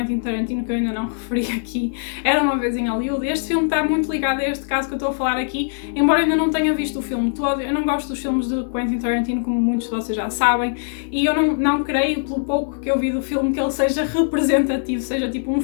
Tarantino, que eu ainda não referi aqui, Era Uma Vez em Hollywood, este filme está muito ligado a este caso que eu estou a falar aqui, embora eu ainda não tenha visto o filme todo. Eu não gosto dos filmes de Quentin Tarantino, como muitos de vocês já sabem, e eu não creio, pelo pouco que eu vi do filme, que ele seja representativo, seja tipo um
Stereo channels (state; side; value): silent; right; digital silence